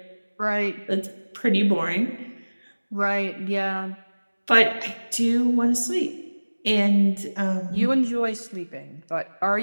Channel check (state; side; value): inverted; both; correlation -1.00